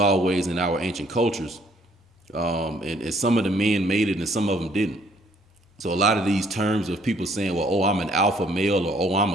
in our ancient cultures. And some of the men made it and some of them didn't. So a lot of these terms of people saying, well, oh, I'm an alpha male, or oh, I'm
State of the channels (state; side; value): normal; both; correlation 0.63